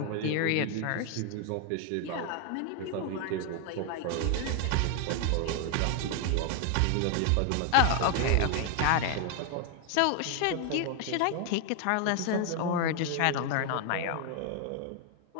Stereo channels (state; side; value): different; both; correlation 0.00